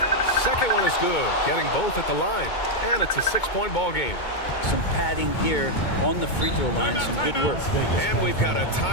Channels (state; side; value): late; right; 2.2 ms